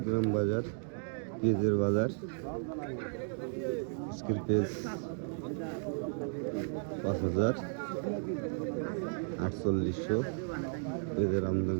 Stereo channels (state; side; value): silent; left; 55 dB below the other